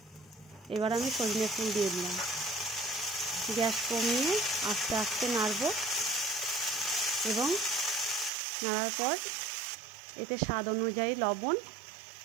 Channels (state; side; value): drops out; left; at 8.3 s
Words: এবার আমি সজনে ফুল দিয়ে দিলাম। গ্যাস কমিয়ে আস্তে আস্তে নাড়ব এবং নাড়ার পর এতে স্বাদ অনুযায়ী লবণ